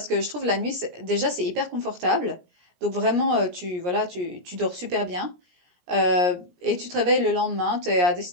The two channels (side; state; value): left; late; 17 ms